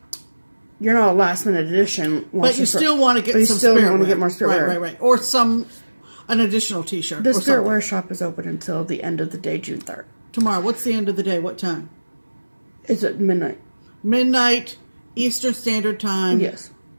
you're not a last minute addition. But you still want to get some still spiritware. want to get more spiritware. Right. Or an additional t-shirt. The or spiritware shop is open until the end of the day, June 3rd. Tomorrow. What's the end of the day? What time? It's at midnight. Midnight, Eastern Standard Time. Yes.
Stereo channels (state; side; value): inverted; both; correlation -1.00